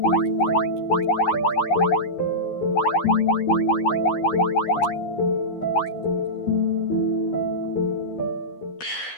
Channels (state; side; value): late; right; 13 ms